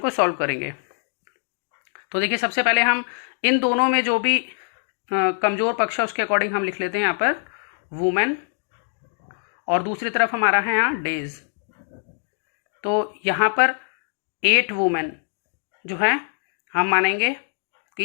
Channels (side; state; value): right; silent; digital silence